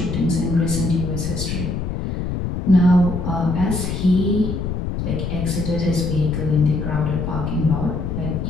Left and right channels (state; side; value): noise; left; rumble, 3 dB below the sound